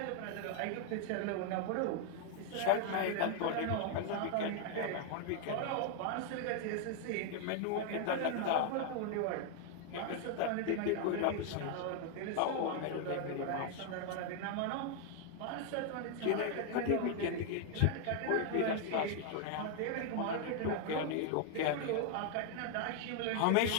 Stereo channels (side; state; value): both; different; correlation 0.00